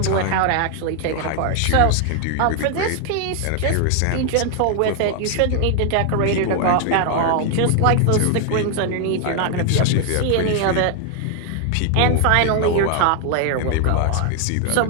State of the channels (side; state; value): both; different; correlation 0.00